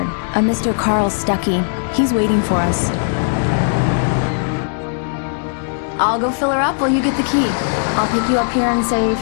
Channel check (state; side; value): silent; right; digital silence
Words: a Mr. Carl Stuckey. He's waiting for us. I'll go fill her up while you get the key. I'll pick you up here in, say,